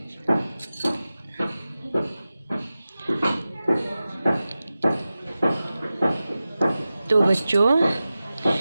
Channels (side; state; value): both; inverted; correlation -0.95